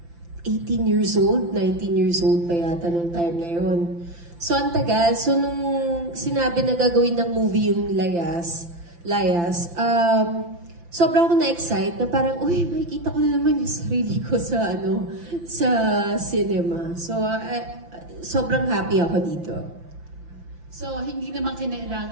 18 years old, 19 years old pa yata nung time na yun. So ang tagal. So nung sinabi na gagawin ng movie yung Layas, sobrang ako na-excite na parang, uy, makikita ko na naman yung sarili ko sa cinema. So sobrang happy ako dito. So, hindi naman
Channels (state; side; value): late; left; 5.9 ms